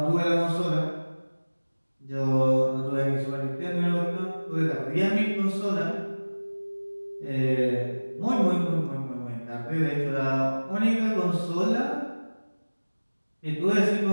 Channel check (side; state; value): both; inverted; correlation -1.00